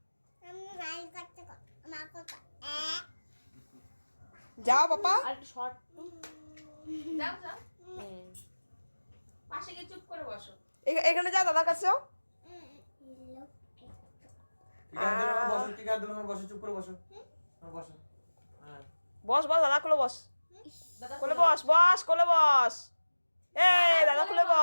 যাও পাপা। আর একটু শর্ট যাও যাও পাশে গিয়ে চুপ করে বসো। এখানে যাও দাদার কাছেও। টিকা দিলাম বসো চুপ করে বসো বসো। হ্যাঁ বস বস দাদা কোলে বস। দাদা কোলে বস বস কোলে বস। এই দাদা কোলে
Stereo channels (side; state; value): both; inverted; correlation -1.00